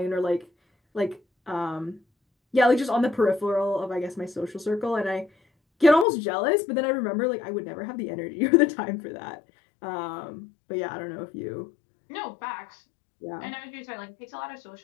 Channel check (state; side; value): drops out; right; at 6.1 s